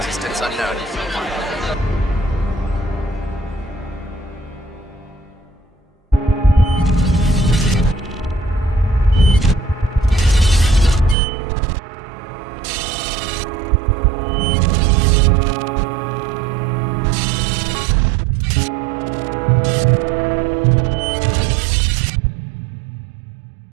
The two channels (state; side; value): drops out; left; at 11.2 s